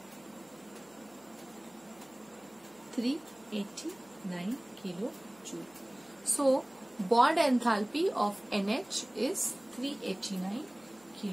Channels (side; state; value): right; noise; hum, 30 dB below the sound